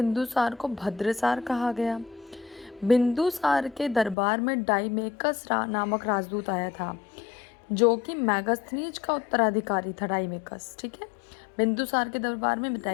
को भद्रसार कहा गया। बिंदुसार के दरबार में डाइमेकस नामक राजदूत आया था, जो कि मैगस्थनीज का उत्तराधिकारी था। डाइमेकस, ठीक है। बिंदुसार के दरबार में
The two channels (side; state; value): right; drops out; at 4.2 s